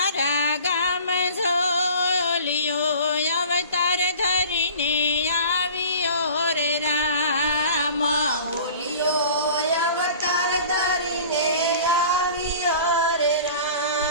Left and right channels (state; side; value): inverted; both; correlation -0.43